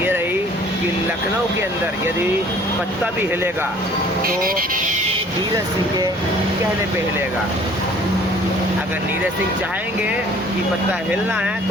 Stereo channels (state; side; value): normal; both; correlation 0.53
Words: रही कि लखनऊ के अंदर यदि पत्ता भी हिलेगा तो नीरज सिंह के कहने पे हिलेगा। अगर नीरज सिंह चाहेंगे कि पत्ता हिलना है